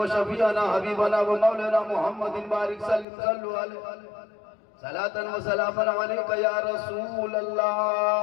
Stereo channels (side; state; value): right; drops out; at 3.1 s